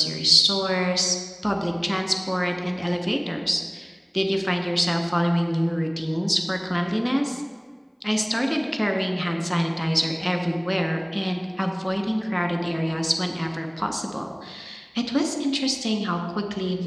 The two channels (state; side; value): identical; both; correlation 1.00